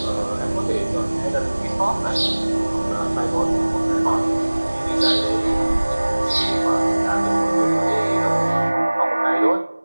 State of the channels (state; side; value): inverted; both; correlation -1.00